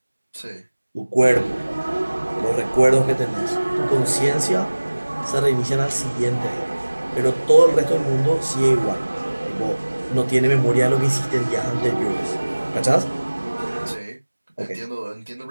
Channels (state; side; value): inverted; both; correlation -1.00